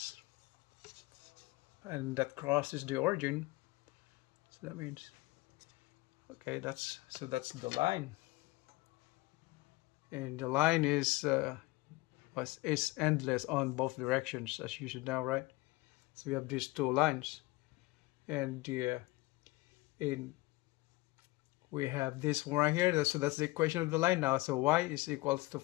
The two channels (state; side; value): quieter; right; 21.4 dB